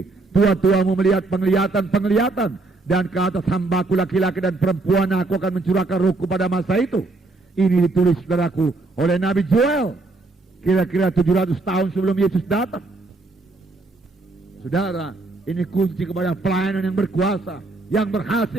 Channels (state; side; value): quieter; left; 3.3 dB